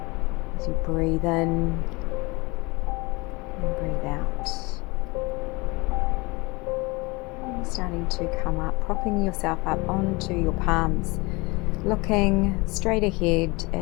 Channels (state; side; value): quieter; right; 25.4 dB